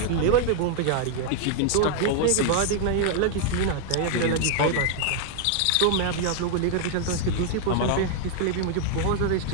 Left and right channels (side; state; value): both; different; correlation 0.00